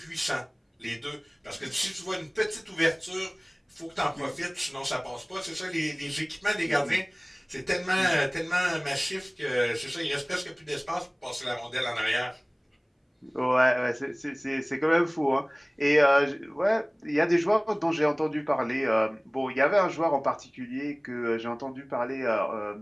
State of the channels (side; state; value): both; identical; correlation 1.00